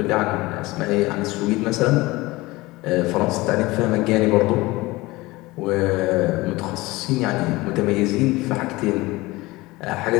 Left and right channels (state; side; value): quieter; right; 20.9 dB